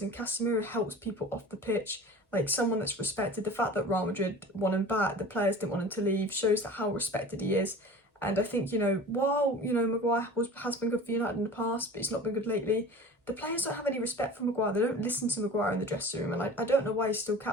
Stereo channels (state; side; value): normal; both; correlation 0.39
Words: and Casemiro helps people off the pitch, like someone that's respected. The fact that Real Madrid won him back, the players didn't want him to leave, shows that how respected he is. And I think, you know, while, you know, Maguire has been good for United in the past, but he's not been good lately, the players don't have any respect for Maguire. They don't listen to Maguire in the dressing room, and I don't know why he's still